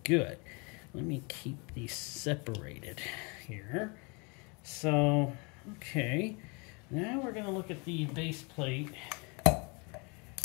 good. Let me keep these separated here. So, okay, now we're going to look at the base plate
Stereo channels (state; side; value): quieter; right; 31.4 dB